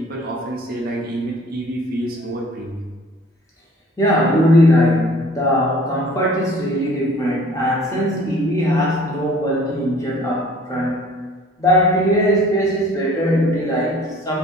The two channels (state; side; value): normal; both; correlation 0.52